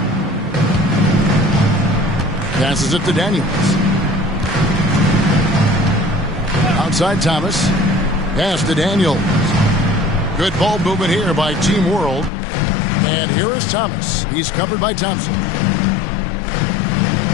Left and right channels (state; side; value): drops out; right; at 12.3 s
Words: Passes it to Daniels. Outside Thomas. Pass to Daniels. Good ball movement here by Team World. And here is Thomas. He's covered by Thompson.